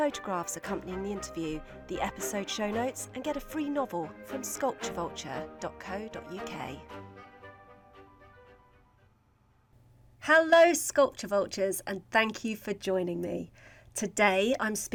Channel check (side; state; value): both; identical; correlation 1.00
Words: accompanying the interview, the episode show notes and get a free novel from sculpturevulture.co.uk. Hello Sculpture Vultures and thank you for joining me. Today I'm